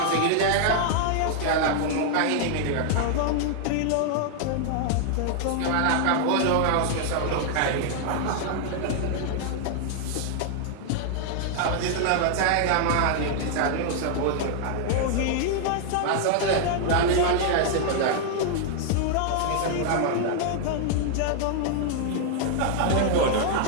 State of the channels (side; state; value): both; different; correlation 0.00